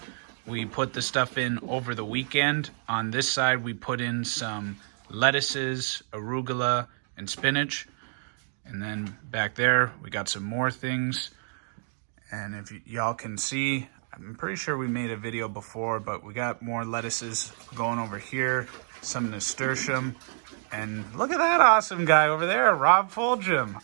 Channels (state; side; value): silent; left; digital silence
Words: We put the stuff in over the weekend. On this side, we put in some lettuces, arugula, and spinach. And then back there, we got some more things. And if y'all can see, I'm pretty sure we made a video before, but we got more lettuces going over here, some nasturtium, and look at that awesome guy over there, Rob Fulgham.